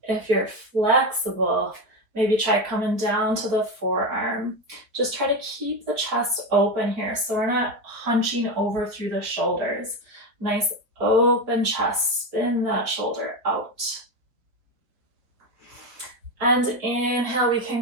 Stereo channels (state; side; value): late; left; 4.2 ms